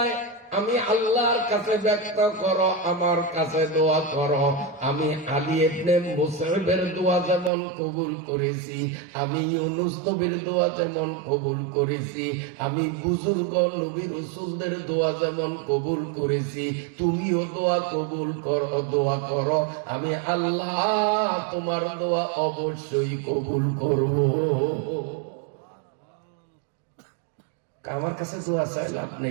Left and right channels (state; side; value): drops out; left; at 7.5 s